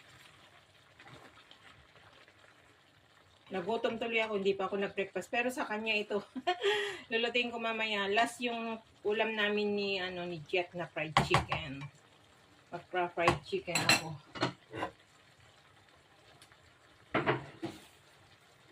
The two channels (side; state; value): both; identical; correlation 1.00